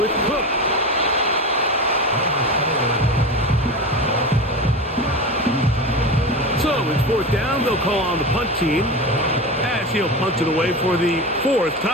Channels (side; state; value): both; normal; correlation 0.25